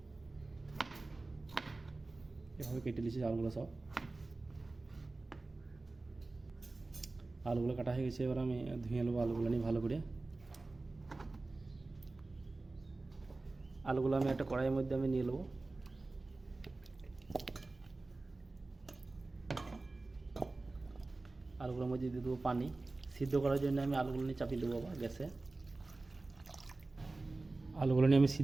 এভাবে কেটে নিয়েছি আলুগুলো সব। আলুগুলো কাটা হয়ে গেছে। এবার আমি ধুয়ে নেবো আলুগুলো নিয়ে ভালো করে। আলুগুলো আমি একটা কড়াইয়ের মধ্যে আমি নিয়ে নেবো। আলুগুলোর মধ্যে দিয়ে দেবো পানি। সিদ্ধ করার জন্য আমি আলুগুলো নিয়ে চাপিয়ে দেবো আবার গ্যাসে। আলুগুলো নিয়ে আমি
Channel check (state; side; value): quieter; left; 3.3 dB